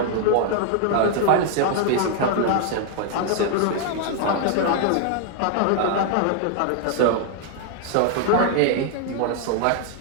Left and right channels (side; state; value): both; different; correlation 0.00